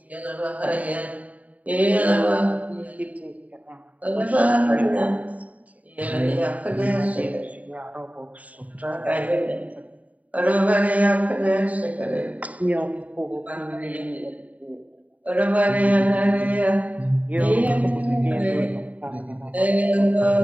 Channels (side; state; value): left; late; 0.070 ms